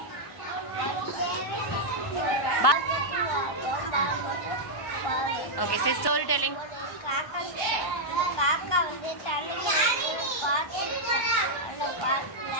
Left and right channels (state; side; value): late; right; 1.1 ms